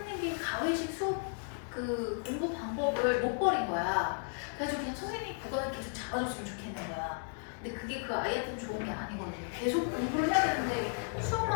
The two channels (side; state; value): right; silent; 55 dB below the other